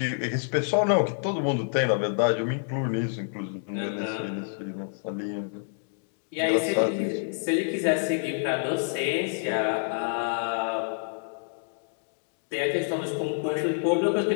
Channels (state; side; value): silent; right; digital silence